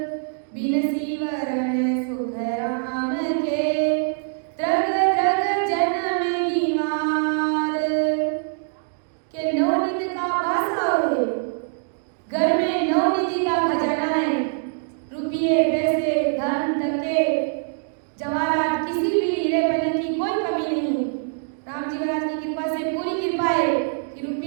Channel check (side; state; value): left; silent; digital silence